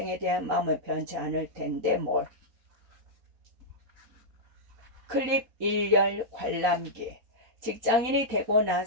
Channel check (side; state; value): left; late; 4.3 ms